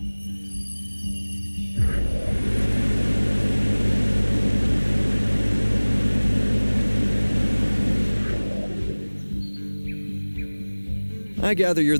I gather you're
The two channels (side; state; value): both; inverted; correlation -1.00